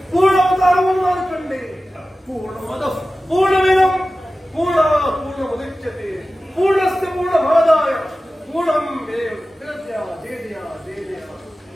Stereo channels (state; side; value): normal; both; correlation 0.95